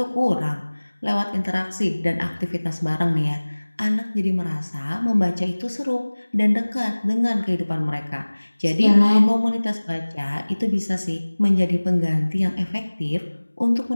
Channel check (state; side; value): inverted; both; correlation -1.00